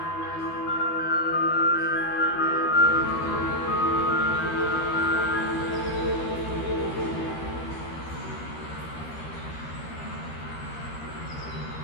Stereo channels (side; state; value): right; late; 13 ms